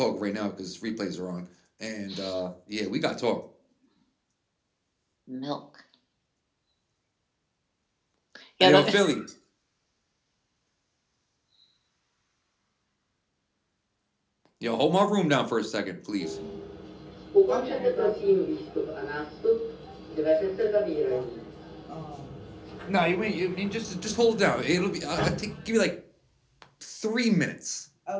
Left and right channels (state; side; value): identical; both; correlation 1.00